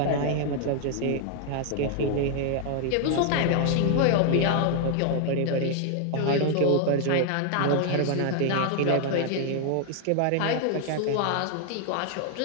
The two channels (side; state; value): both; different; correlation 0.00